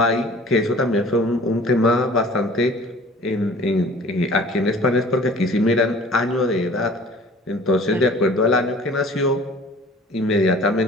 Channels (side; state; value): both; normal; correlation 0.48